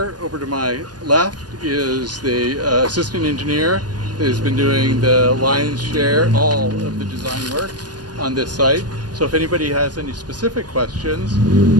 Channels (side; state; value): left; late; 0.69 ms